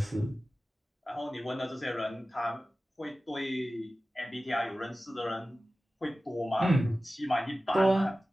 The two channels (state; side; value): normal; both; correlation 0.96